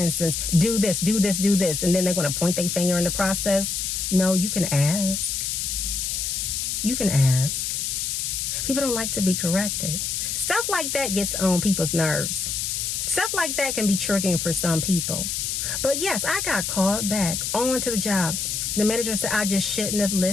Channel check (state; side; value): noise; left; hiss, 2 dB below the sound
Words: do this, and then they're going to point their finger in the process. No, you can ask. You can ask. People don't like to be corrected. Stuff like that gets on people's nerves. Stuff like that can be triggering for some people. But yes, I got called back onto the job. The manager said, I just shouldn't have